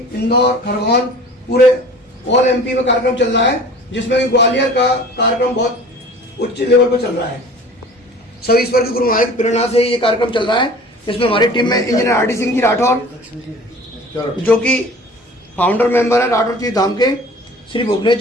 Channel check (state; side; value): normal; both; correlation 0.44